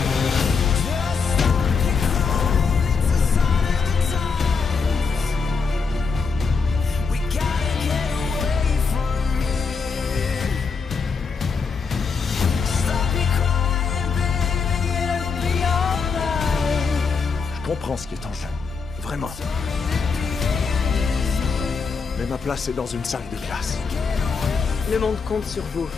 Je comprends ce qui est en jeu. Vraiment. Mais ma place est dans une salle de classe. Le monde compte sur vous.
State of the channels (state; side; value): quieter; right; 5.2 dB